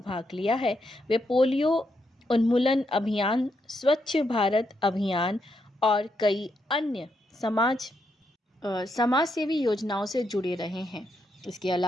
भाग लिया है। वे पोलियो उन्मूलन अभियान, स्वच्छ भारत अभियान और कई अन्य समाज सेवी योजनाओं से जुड़े रहे हैं। इसके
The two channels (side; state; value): both; normal; correlation 0.80